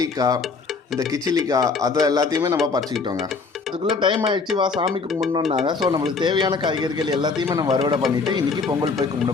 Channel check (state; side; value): quieter; right; 4.5 dB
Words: இந்த கிச்சிலிக்காய் அதை எல்லாத்தையுமே நம்ம பறிச்சுக்கிட்டோங்க. அதுக்குள்ளே டைம் ஆகிடுச்சு, வா சாமி கும்பிடணுன்னாங்க. ஸோ நம்மளுக்கு தேவையான காய்கறிகள் எல்லாத்தையுமே நம்ம அறுவடை பண்ணிவிட்டு இன்றைக்கி பொங்கல் போய் கும்பிட